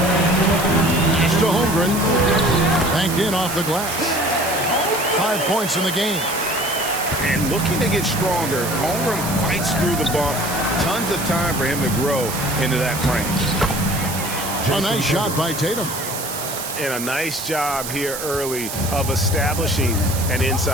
5. It's to Holmgren. Banked in off the glass. 5 points in the game. And looking to get stronger, Holmgren fights through the bump. Tons of time for him to grow into that frame. A nice shot by Tatum. And a nice job here early of establishing an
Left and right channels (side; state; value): right; noise; hiss, 7 dB below the sound